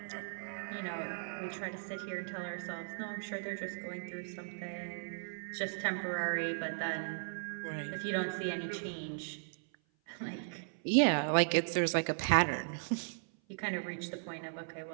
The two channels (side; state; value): left; silent; 53 dB below the other